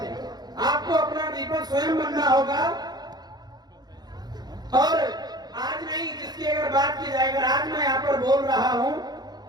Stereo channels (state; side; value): late; left; 0.20 ms